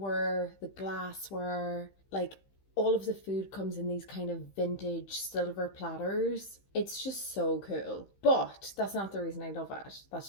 the glassware, like all of the food comes in these kind of vintage silver platters. It's just so cool. But that's not the reason I love it.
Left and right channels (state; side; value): late; right; 15 ms